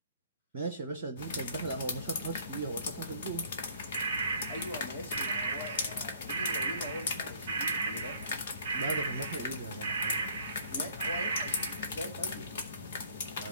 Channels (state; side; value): inverted; both; correlation -0.57